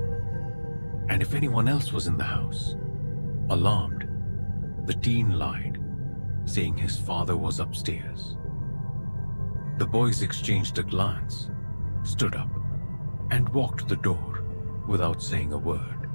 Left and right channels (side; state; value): both; inverted; correlation -1.00